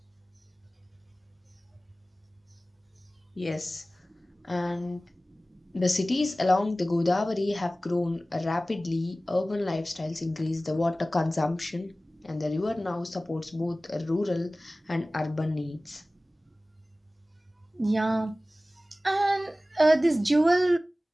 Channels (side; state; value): both; normal; correlation 0.97